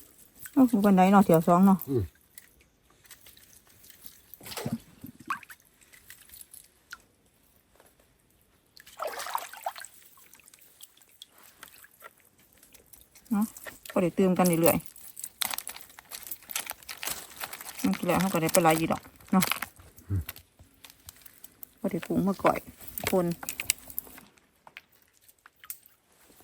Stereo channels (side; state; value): both; identical; correlation 1.00